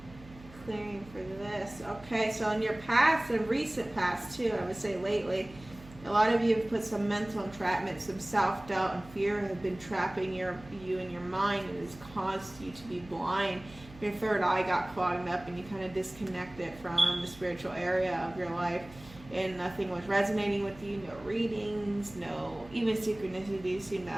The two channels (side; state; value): right; noise; hum, 19 dB below the sound